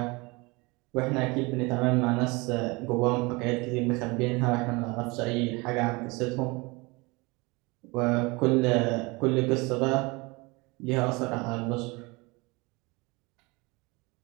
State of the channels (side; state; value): left; quieter; 25.8 dB